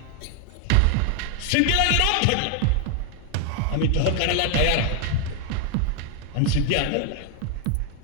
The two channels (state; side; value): different; both; correlation 0.01